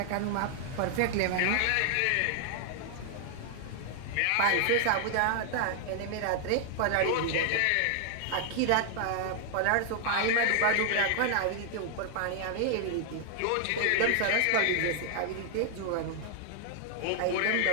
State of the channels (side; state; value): both; different; correlation 0.00